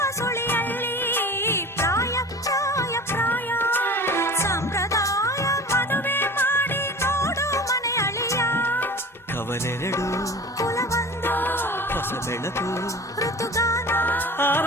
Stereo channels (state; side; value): normal; both; correlation 0.38